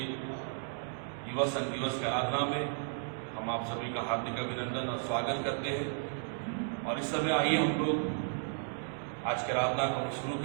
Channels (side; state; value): left; silent; digital silence